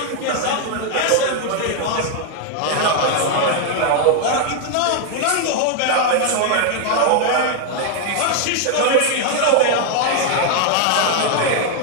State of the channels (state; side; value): different; both; correlation 0.00